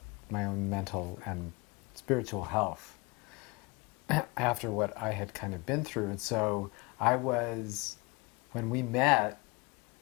my own mental and spiritual health after what I had kind of been through. And so when we met,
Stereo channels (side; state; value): right; quieter; 26.7 dB